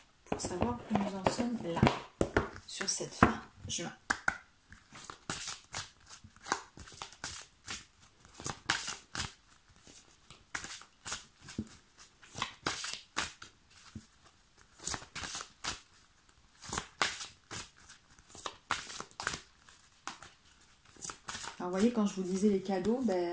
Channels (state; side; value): identical; both; correlation 1.00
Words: Pour savoir où nous en sommes là, sur cette fin juin. Alors, vous voyez, quand je vous disais les cadeaux,